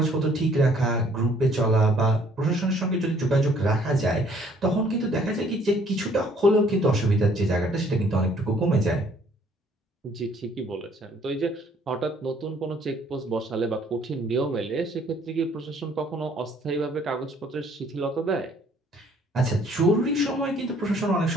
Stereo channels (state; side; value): normal; both; correlation 0.61